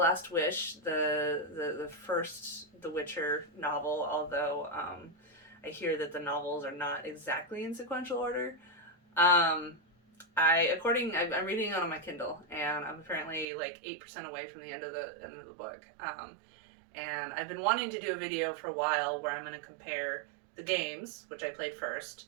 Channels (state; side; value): drops out; left; at 13.5 s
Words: Wish, the first The Witcher novel, although I hear that the novels are not exactly in sequential order. I'm reading it on my Kindle, and I'm apparently like 8% away from the end of the book. And I've been wanting to do a video for a while where I'm going to compare the games, which I played first,